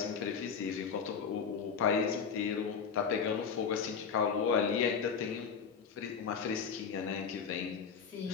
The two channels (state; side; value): quieter; right; 6.3 dB